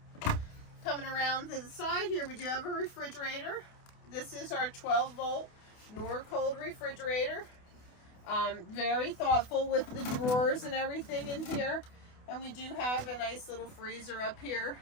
Coming around to the side here, we do have a refrigerator. This is our 12-volt Norcold refrigerator. Very thoughtful with the drawers and everything in here. And we do have a nice little freezer up here.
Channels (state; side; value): late; right; 28 ms